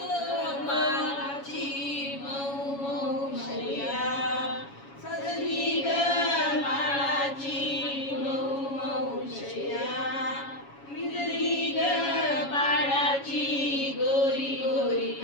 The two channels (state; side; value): late; right; 7.2 ms